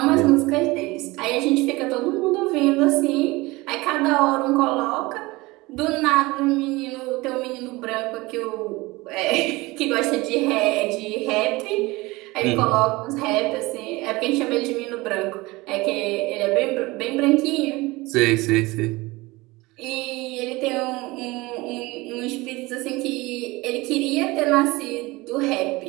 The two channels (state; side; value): quieter; left; 21.9 dB